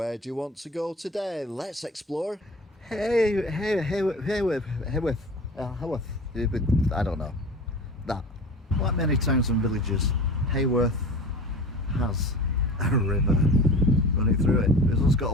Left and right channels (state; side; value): normal; both; correlation 0.36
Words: do you want to go today? Let's explore. Haworth. I don't know. That. Like many towns and villages, Haworth has a river running through it. It's also got